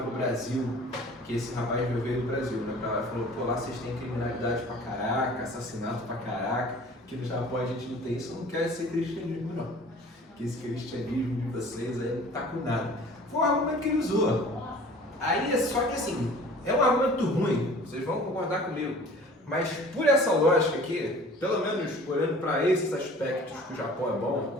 o Brasil, que esse rapaz veio do Brasil, né, pra lá, falou, pô, lá vocês têm criminalidade pra caraca, assassinato pra caraca, que no Japão a gente não tem isso, eu não quero ser cristianismo não, que esse cristianismo de vocês aí não tá com nada. Foi um argumento que ele usou. Aí, só que assim, é um argumento ruim, vocês vão concordar comigo, mas por essa lógica aqui, pelo menos olhando para esses aspectos que o Japão é bom,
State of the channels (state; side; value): normal; both; correlation 0.46